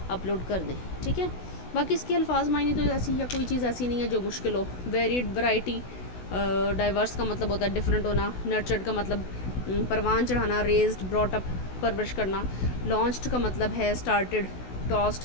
اپلوڈ کر دیں. ٹھیک ہے، باقی اس کے الفاظ معنی تو ایسی یا کوئی چیز ایسی نہیں ہے جو مشکل ہو. ویریڈ، ورائٹی، ڈائیورس کا مطلب ہوتا ہے ڈفرینٹ ہونا. نرچرڈ کا مطلب پروان چڑھانا، ریزڈ، براٹ اپ، پرورش کرنا. لانچڈ کا مطلب ہے اسٹارٹڈ،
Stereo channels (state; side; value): late; right; 16 ms